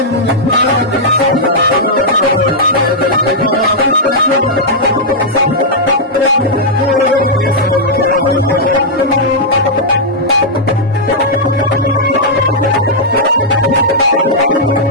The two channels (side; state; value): both; normal; correlation -0.08